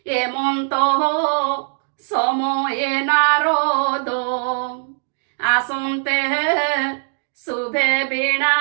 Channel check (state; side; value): silent; left; digital silence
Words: এমন্ত সময়ে নারদ আসন্তে শুভে